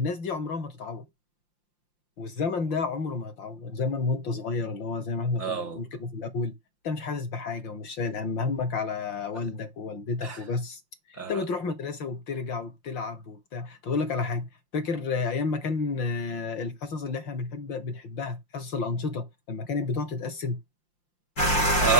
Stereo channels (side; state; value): right; late; 5.8 ms